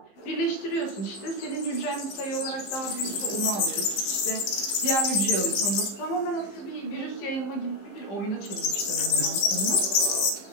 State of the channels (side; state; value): right; late; 15 ms